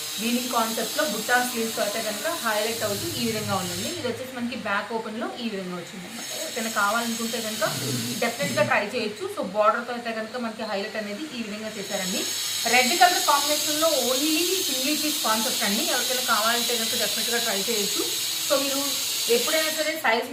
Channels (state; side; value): identical; both; correlation 1.00